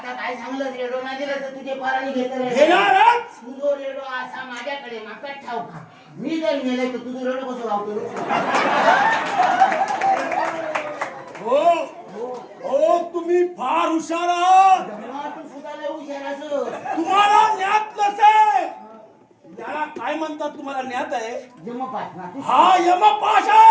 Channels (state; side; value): identical; both; correlation 1.00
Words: काय सांगलं रेडो नाही दिला तर तुझे पाराने घेणारच. तुझो रेडो असा माझ्याकडे माका ठाव का. मी जर नेले तर तुझं रेडो कसं लावतो. हो हो तुम्ही फार हुशार आहात. तू सुद्धा लय हुशार असं. तुम्हाला ज्ञात नसेल. याला काय म्हणतात तुम्हाला ज्ञात आहे? जमपास ना. हा यमपाश